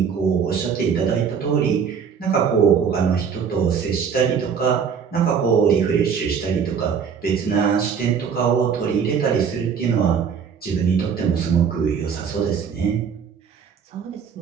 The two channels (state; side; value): quieter; left; 6.8 dB